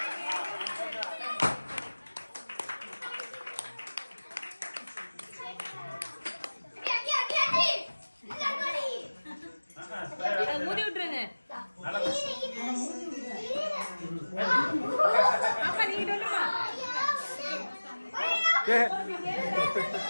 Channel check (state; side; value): inverted; both; correlation -1.00